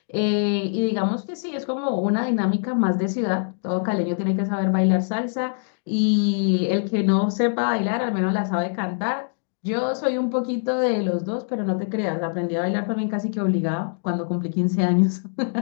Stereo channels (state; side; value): silent; right; digital silence